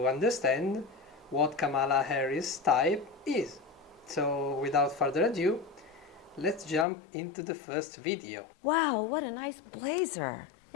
understand what Kamala Harris type is. So without further ado, let's jump into the first video. Wow, what a nice blazer.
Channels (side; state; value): right; drops out; at 6.9 s